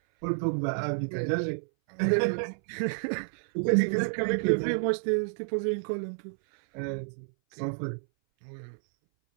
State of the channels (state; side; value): silent; left; 58 dB below the other